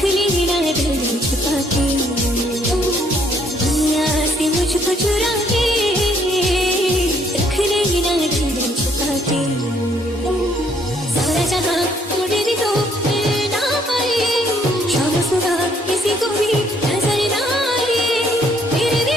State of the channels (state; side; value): normal; both; correlation 0.66